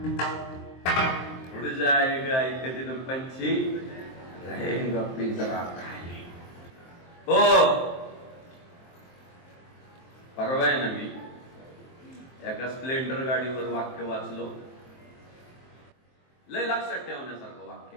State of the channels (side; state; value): right; late; 23 ms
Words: उड़ जाएगा एक दिन पंछी रहेगा पिंजरा खाली. हो, परवा आहे ना मी एका स्प्लेंडर गाडीवर वाक्य वाचलो, लय लक्षात ठेवण्यासारखं वाक्य.